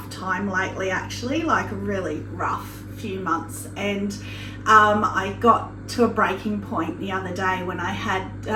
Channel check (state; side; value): identical; both; correlation 1.00